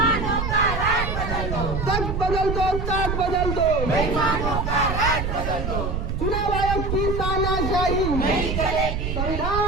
का राज बदल दो, तक बदल दो, ताक बदल दो, बेईमानों का राज बदल दो। चुनाव आयोग की तानाशाही नहीं चलेगी।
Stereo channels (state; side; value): noise; right; rumble, 2 dB below the sound